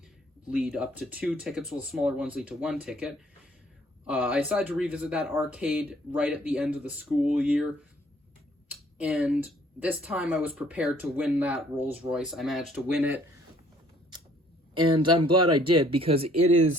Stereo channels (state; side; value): normal; both; correlation 0.60